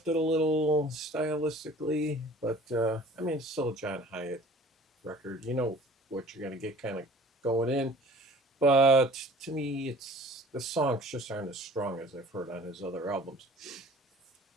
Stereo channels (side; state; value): both; normal; correlation 0.47